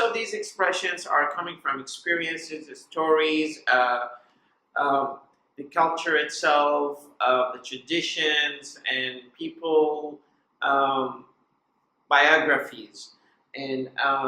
these expressions are coming from experiences, the stories, the culture itself, the traditions, and people, biographies. And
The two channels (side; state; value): both; identical; correlation 1.00